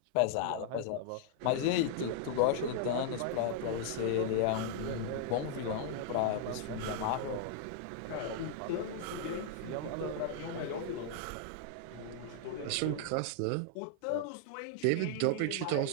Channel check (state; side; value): different; both; correlation -0.01